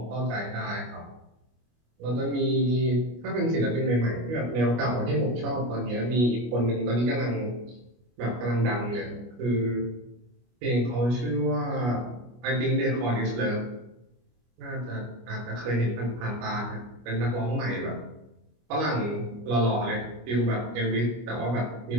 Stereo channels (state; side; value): late; left; 25 ms